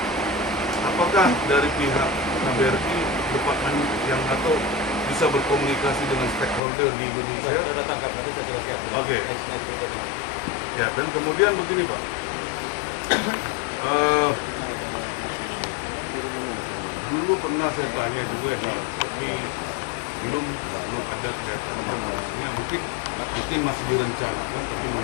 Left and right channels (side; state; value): right; drops out; at 6.6 s